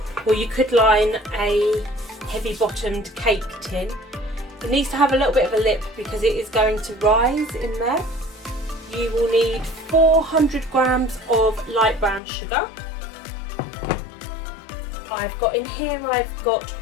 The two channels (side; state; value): right; drops out; at 12.2 s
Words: or you could line a heavy bottomed cake tin. It needs to have a little bit of a lip because it is going to rise in there. You will need 400 grams of light brown sugar. I've got